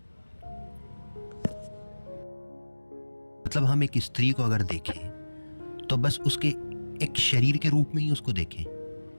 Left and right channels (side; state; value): both; inverted; correlation -1.00